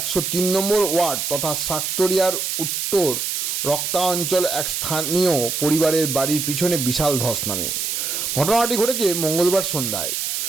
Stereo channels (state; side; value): noise; right; hiss, 2 dB below the sound